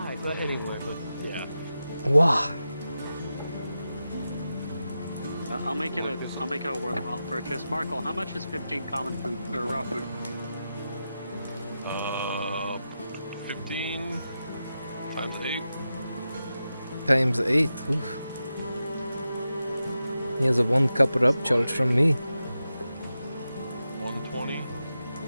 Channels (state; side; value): inverted; both; correlation -0.90